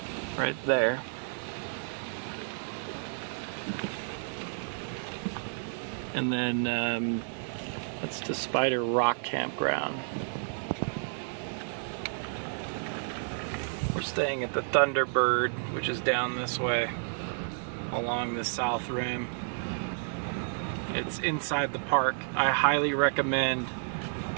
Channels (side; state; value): left; silent; 57 dB below the other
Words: right there. And then that's the Spider Rock Campground. We're staying at the Thunderbird, which is down this way along the south rim. It's inside the park. I highly recommend